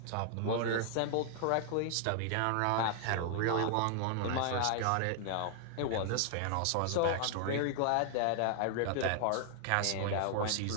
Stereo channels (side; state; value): both; different; correlation 0.00